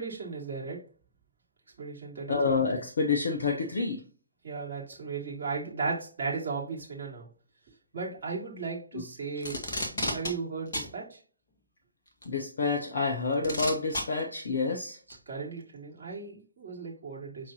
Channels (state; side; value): inverted; both; correlation -0.53